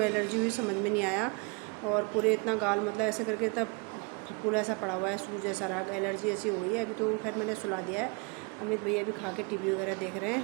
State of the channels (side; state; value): left; quieter; 31.8 dB